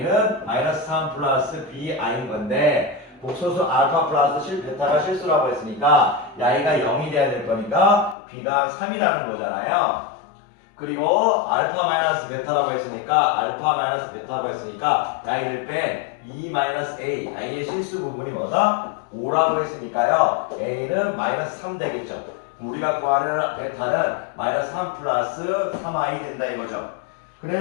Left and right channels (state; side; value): drops out; right; at 8.2 s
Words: 마이너스 3 플러스 bi인 건데 복소수 알파 플러스 베타가 실수라고 했으니까 야이가 0이 돼야 될 거니까 b가 3이라는 거잖아요. 그리고 알파 마이너스 베타라고 했으니까 야이를 뺀 2-a 야이의 실수 부분이 뭐다? 5라고 했으니까요. a는 마이너스 3 되겠죠. 우리가 구하는 베타는 마이너스 3 플러스 3i 된다 이거죠.